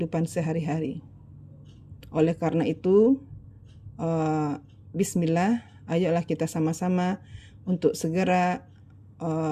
sehari-hari. Oleh karena itu, bismillah, ayolah kita sama-sama untuk segera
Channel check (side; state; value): both; identical; correlation 1.00